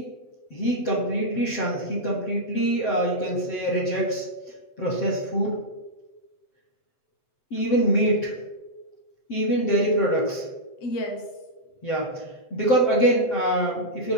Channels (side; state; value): right; late; 7.9 ms